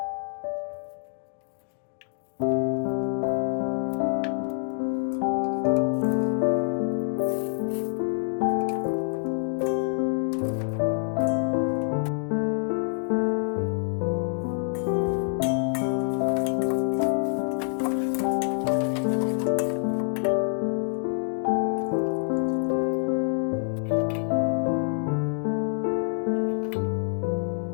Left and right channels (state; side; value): silent; right; 57 dB below the other